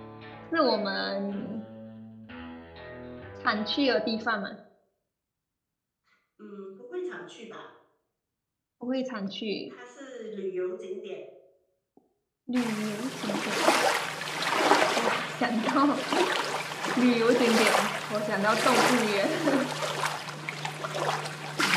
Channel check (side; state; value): both; identical; correlation 1.00